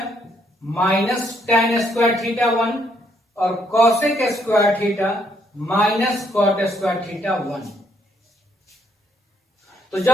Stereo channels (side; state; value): both; normal; correlation 0.71